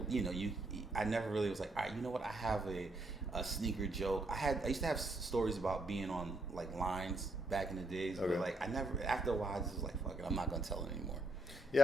you know, I never really was like, all right, you know what? I have a sneaker joke. I used to have stories about being on like lines back in the days, but like after a while, I just was like, fuck it, I'm not gonna tell it anymore.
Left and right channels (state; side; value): normal; both; correlation 0.75